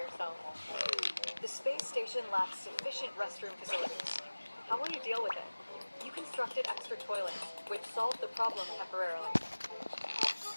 The space station lacks sufficient restroom facilities. How will you deal with it? You constructed extra toilets, which solved the problem temporarily.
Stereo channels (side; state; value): both; inverted; correlation -1.00